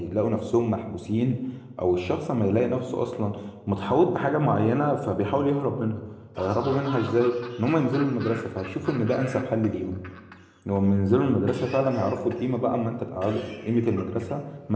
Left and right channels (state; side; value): identical; both; correlation 1.00